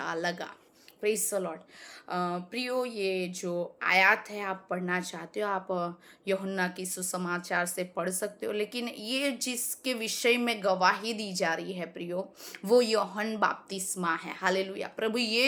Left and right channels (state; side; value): identical; both; correlation 1.00